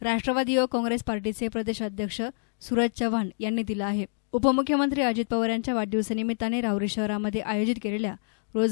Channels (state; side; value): silent; right; digital silence